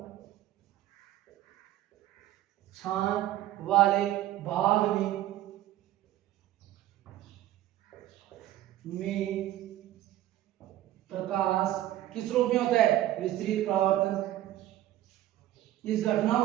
प्रकाश किस रूप में होता है, विस्तृत परावर्तन। इस घटना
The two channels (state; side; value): quieter; left; 13.8 dB